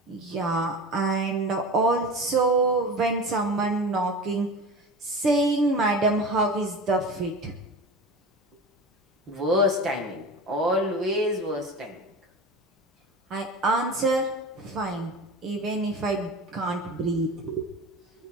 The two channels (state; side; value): normal; both; correlation 0.31